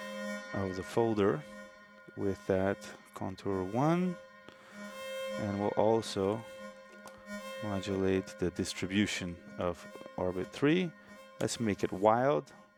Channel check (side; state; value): both; identical; correlation 1.00